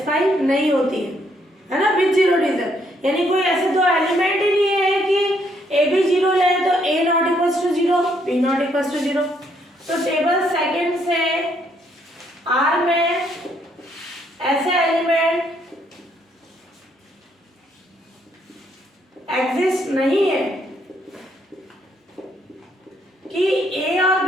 नहीं होती है ना? विद जीरो डिविजन यानी कोई ऐसे दो एलिमेंट ही नहीं है कि ए भी जीरो ले तो A not equals to zero, B not equals to zero. तो टेबल सेकंड से आर में ऐसे एलिमेंट एग्जिस्ट नहीं है कि ए और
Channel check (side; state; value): both; normal; correlation 0.71